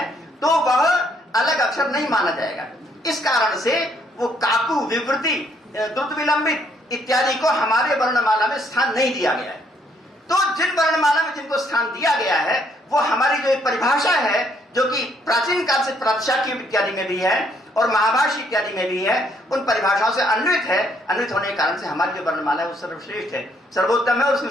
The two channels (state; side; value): normal; both; correlation 0.69